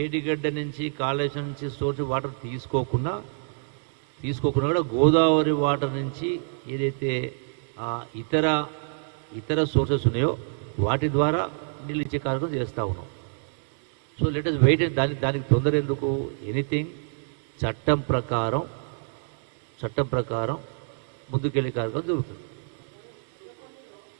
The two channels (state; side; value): silent; left; 60 dB below the other